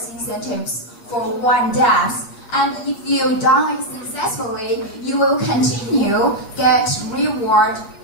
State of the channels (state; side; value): late; right; 8.3 ms